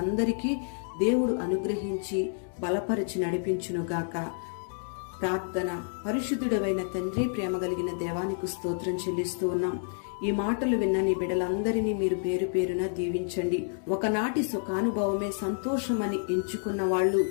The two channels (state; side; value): silent; right; digital silence